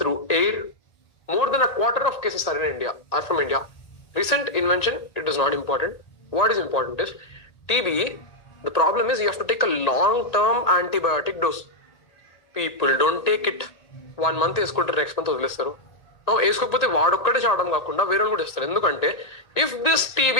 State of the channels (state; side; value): late; right; 1.8 ms